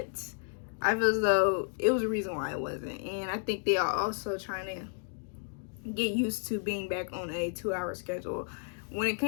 I feel as though it was a reason why it wasn't. And I think they are also trying to get used to being back on a 2-hour schedule. When it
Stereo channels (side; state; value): right; silent; 56 dB below the other